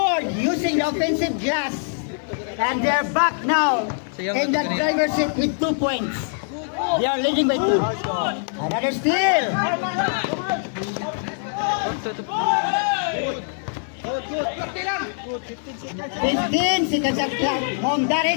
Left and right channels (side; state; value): right; silent; digital silence